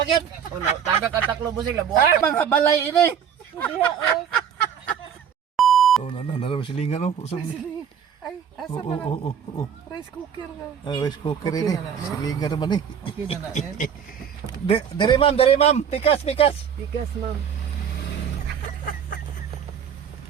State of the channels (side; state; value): left; quieter; 8.0 dB